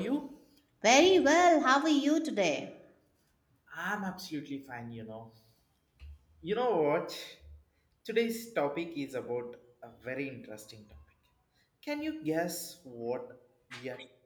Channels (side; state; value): both; identical; correlation 1.00